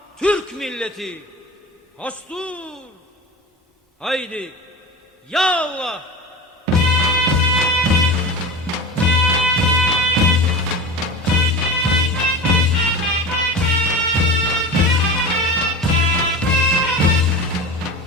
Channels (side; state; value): both; normal; correlation 0.31